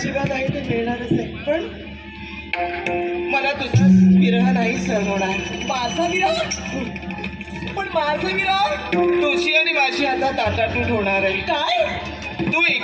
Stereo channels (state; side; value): identical; both; correlation 1.00